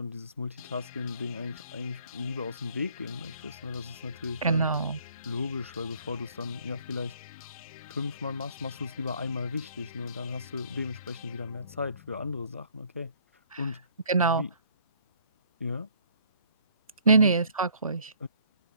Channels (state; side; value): inverted; both; correlation -0.61